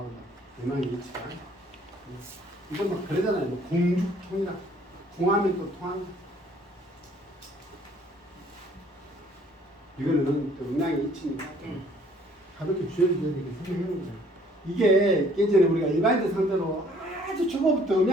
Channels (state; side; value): normal; both; correlation 0.59